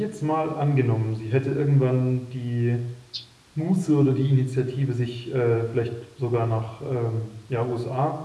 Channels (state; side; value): identical; both; correlation 1.00